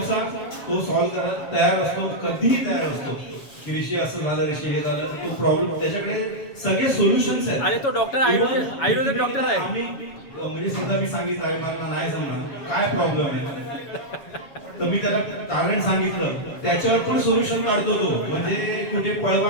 तो सॉल्व्ह करायला तयार असतो, कधीही तयार असतो. की ऋषी असं झालं, ऋषी हे झालं, तो प्रॉब्लेम त्याच्याकडे सगळे सोल्युशन्स आहेत. अरे तो डॉक्टर आयुर्वेदिक डॉक्टर आहे. आम्ही म्हणजे सुद्धा मी सांगितलं आहे मला नाही समजणार काय प्रॉब्लेम आहे, तर मी त्याला कारण सांगितलं, त्याच्यावर पण सोल्युशन काढतो तो. म्हणजे कुठे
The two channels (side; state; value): right; late; 7.2 ms